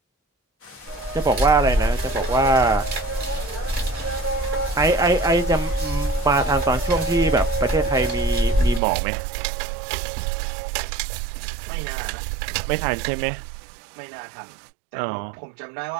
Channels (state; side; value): drops out; left; at 8.8 s